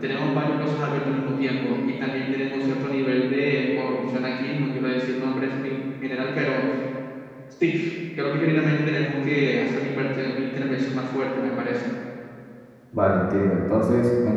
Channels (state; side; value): identical; both; correlation 1.00